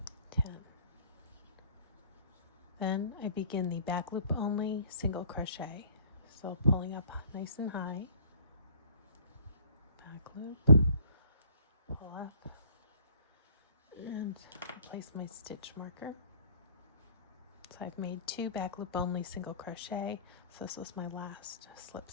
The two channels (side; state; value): both; inverted; correlation -0.54